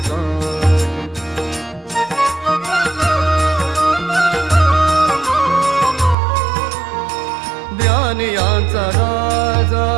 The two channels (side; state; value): left; drops out; at 6.2 s